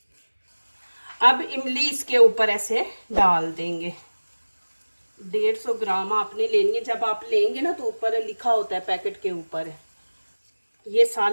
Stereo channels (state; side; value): inverted; both; correlation -1.00